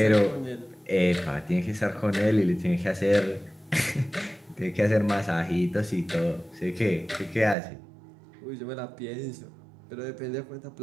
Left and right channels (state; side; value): drops out; left; at 7.6 s